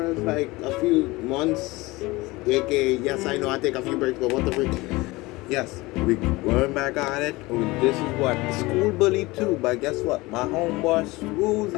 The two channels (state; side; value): quieter; right; 21.5 dB